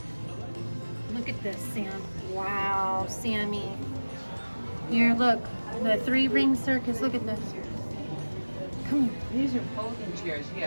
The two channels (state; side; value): inverted; both; correlation -1.00